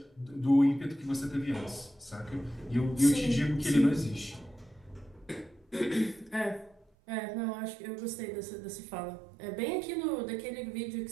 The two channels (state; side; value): drops out; left; at 6.9 s